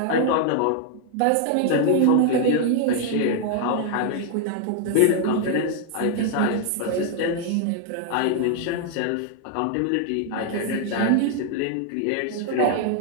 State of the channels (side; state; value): both; different; correlation 0.00